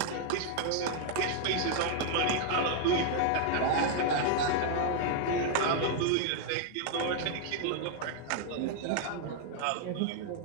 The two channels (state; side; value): different; both; correlation 0.00